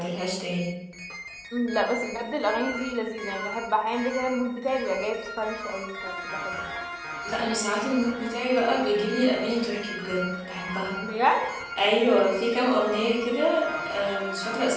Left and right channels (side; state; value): both; identical; correlation 1.00